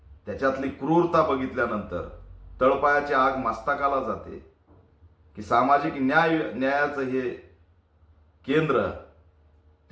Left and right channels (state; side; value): identical; both; correlation 1.00